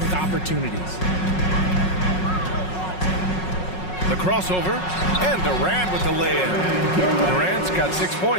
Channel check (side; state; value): right; late; 5.4 ms